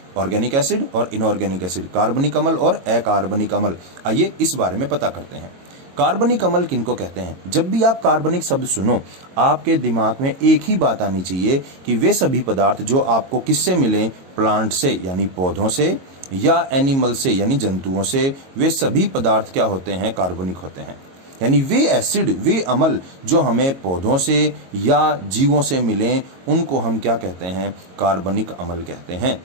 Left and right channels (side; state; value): left; late; 22 ms